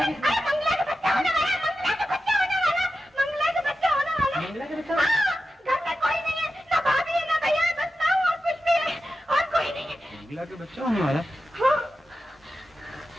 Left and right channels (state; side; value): normal; both; correlation 0.91